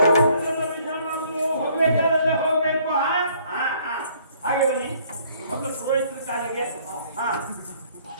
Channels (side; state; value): both; inverted; correlation -0.61